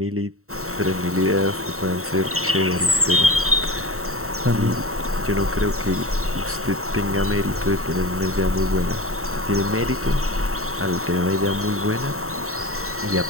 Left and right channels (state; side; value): late; left; 0.63 ms